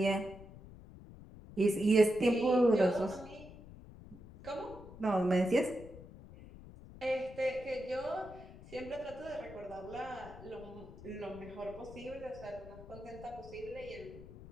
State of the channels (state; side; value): noise; left; rumble, 16 dB below the sound